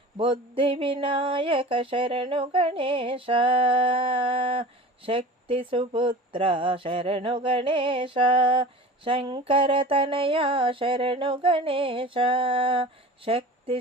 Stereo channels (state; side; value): normal; both; correlation 0.37